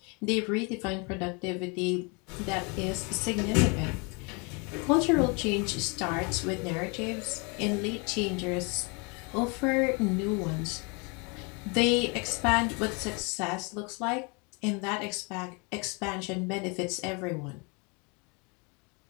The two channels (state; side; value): quieter; right; 31.8 dB